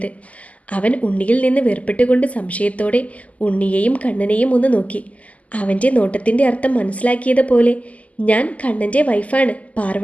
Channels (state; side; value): late; right; 0.072 ms